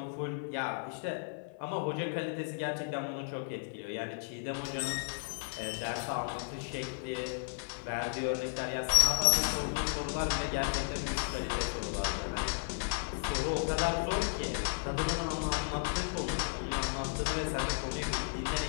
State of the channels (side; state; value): right; silent; 55 dB below the other